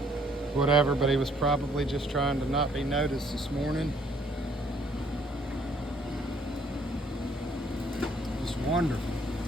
whatever, but he was probably just trying to not be noticed this morning. Just wonderful.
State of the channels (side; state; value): both; normal; correlation 0.64